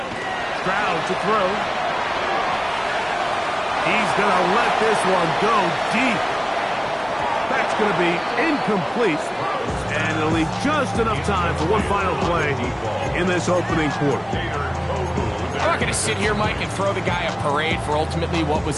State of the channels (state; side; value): identical; both; correlation 1.00